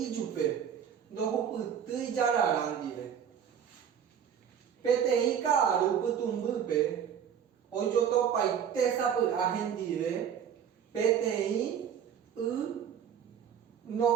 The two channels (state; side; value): quieter; left; 8.4 dB